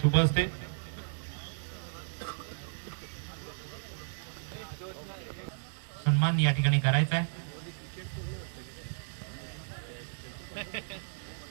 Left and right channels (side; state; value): left; silent; 55 dB below the other